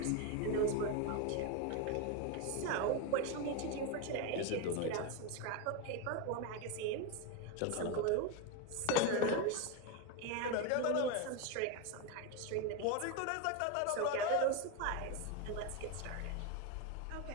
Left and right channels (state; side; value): different; both; correlation 0.03